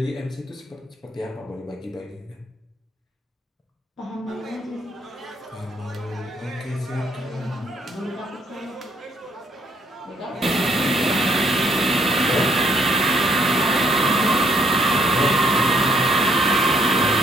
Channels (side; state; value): both; normal; correlation 0.68